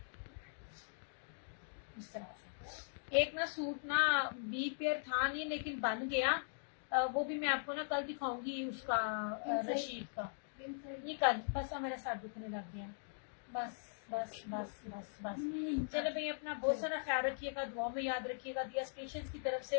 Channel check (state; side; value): silent; right; digital silence